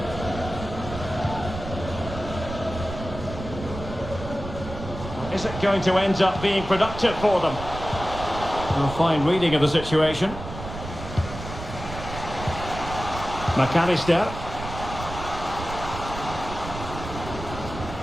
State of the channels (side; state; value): right; noise; rumble, 9 dB below the sound